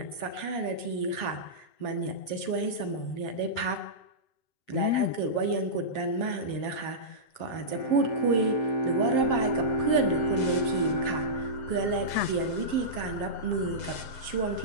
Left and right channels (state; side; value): late; right; 7.6 ms